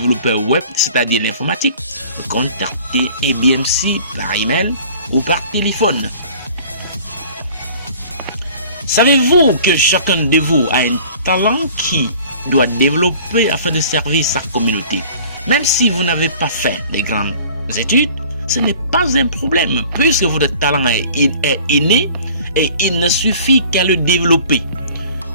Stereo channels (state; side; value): inverted; both; correlation -0.48